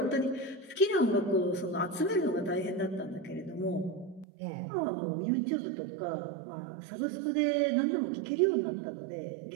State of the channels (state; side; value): drops out; left; at 4.2 s